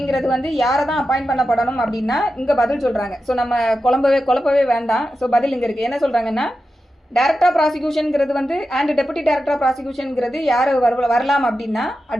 வந்து யாரை தான் அப்பாயிண்ட் பண்ணப்படணும் அப்படின்னா இங்கே பதில் சொல்கிறாங்க. ஸோ நம்ம குழப்பவே வேண்டாம். ஸோ பதில் இங்கே இருக்குது. என்ன சொல்கிறாங்கன்னா, டைரக்டர் ஆஃப் ப்ராசிக்யூஷனுங்கிறது வந்து அண்ட் டெபுட்டி டைரக்டர் ஆஃப் ப்ராசிக்யூஷனுங்கிறது யார் வரலாம் அப்படின்னா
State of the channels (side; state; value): both; normal; correlation 0.91